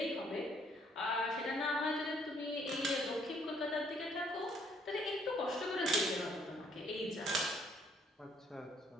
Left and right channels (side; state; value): both; normal; correlation 0.66